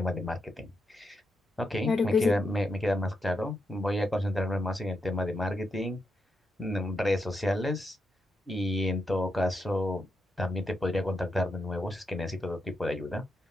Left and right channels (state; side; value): normal; both; correlation 0.84